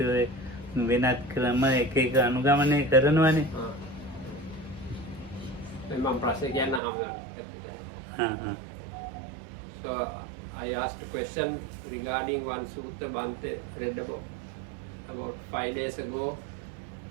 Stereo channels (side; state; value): left; drops out; at 6.8 s